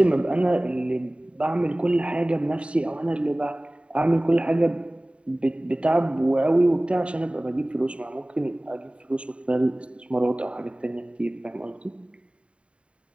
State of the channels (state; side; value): late; left; 0.059 ms